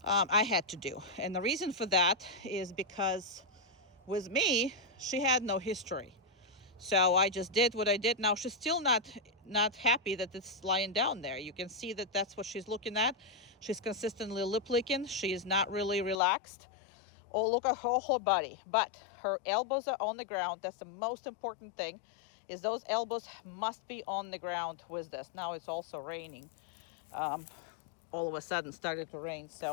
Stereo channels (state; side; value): drops out; right; at 16.2 s